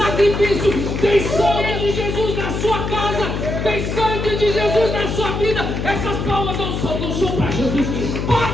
tem sangue de Jesus na sua casa, tem sangue de Jesus na sua vida. Essas palmas não são para Jesus.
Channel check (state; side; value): noise; left; hum, 3 dB below the sound